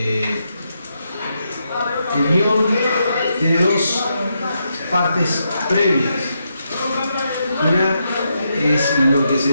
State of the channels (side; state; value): both; inverted; correlation -0.82